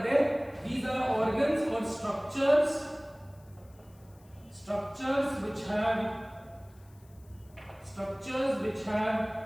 they? These are organs or structures which have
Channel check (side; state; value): left; noise; hiss, 30 dB below the sound